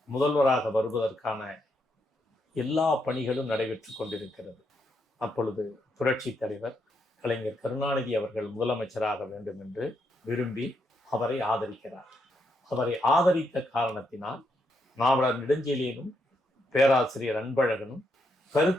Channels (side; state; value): both; normal; correlation 0.79